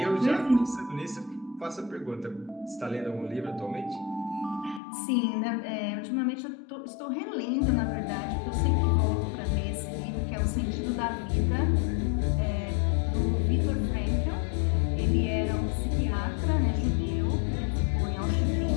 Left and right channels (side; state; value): right; drops out; at 4.8 s